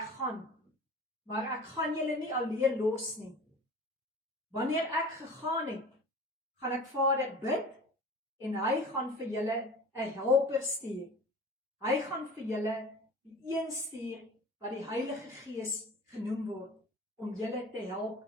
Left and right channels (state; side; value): normal; both; correlation 0.39